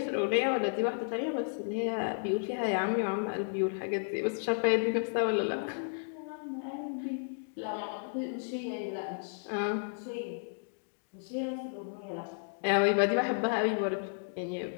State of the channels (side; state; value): right; silent; digital silence